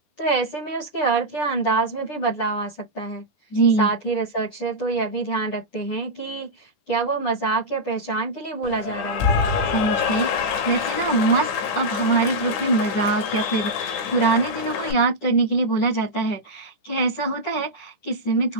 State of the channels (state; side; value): late; right; 10 ms